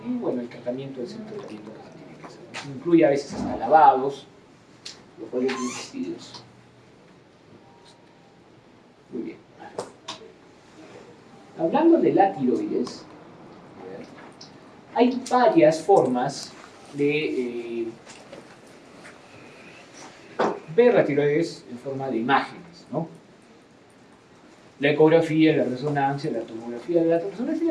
Y bueno, el tratamiento es el tratamiento que se tiene que hacer. Eso incluye a veces hasta lavados, los cuales son vestidos. Muy bien. Hablando de la tiroides, hay varias formas de ver la tiroides en forma de imágenes, ¿no? La ecografía, la resonancia, la tomografía. La resonancia y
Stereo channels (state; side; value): identical; both; correlation 1.00